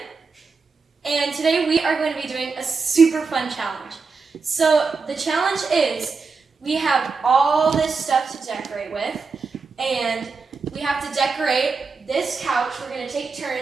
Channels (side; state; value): left; quieter; 4.6 dB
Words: And today we are going to be doing a super fun challenge. So the challenge is we have all this stuff to decorate with, and we have to decorate this couch. We're going to take